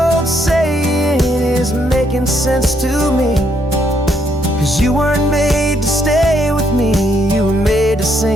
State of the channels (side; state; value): both; normal; correlation 0.73